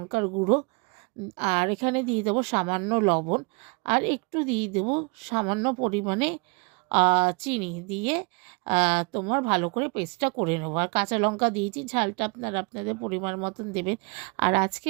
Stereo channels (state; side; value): quieter; left; 31.4 dB